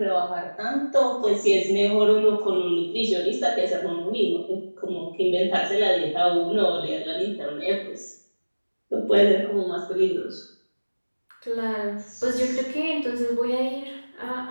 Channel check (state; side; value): inverted; both; correlation -1.00